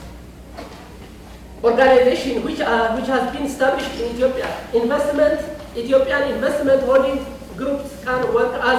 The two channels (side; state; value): both; identical; correlation 1.00